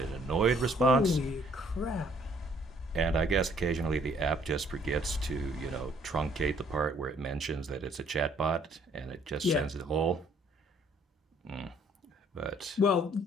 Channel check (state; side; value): normal; both; correlation 0.62